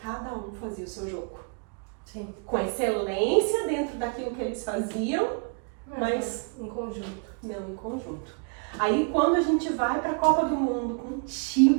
um fazia o seu jogo. Sim. Com excelência dentro daquilo que eles faziam, mas em conjunto. Não em conjunto. Aí quando a gente vai para a Copa do Mundo com um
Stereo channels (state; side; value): quieter; left; 38.9 dB